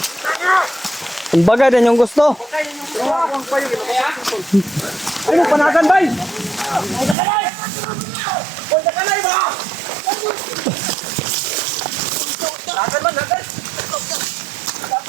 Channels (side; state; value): left; drops out; at 7.2 s